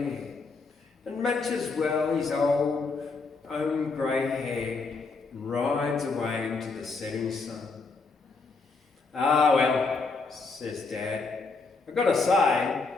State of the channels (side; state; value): right; quieter; 4.2 dB